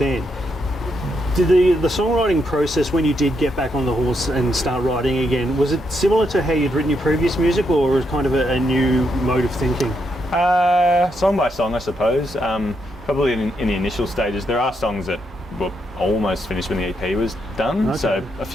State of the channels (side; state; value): both; normal; correlation 0.79